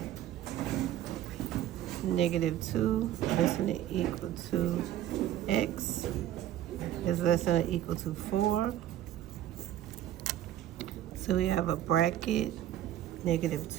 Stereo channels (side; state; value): left; quieter; 12.2 dB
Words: -2 less than or equal to x is less than or equal to 4. So we have a bracket,